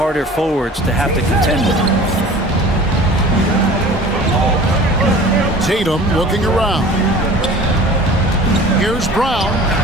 forwards to have to contend with. Tatum looking around. Here's Brown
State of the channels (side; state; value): both; normal; correlation 0.43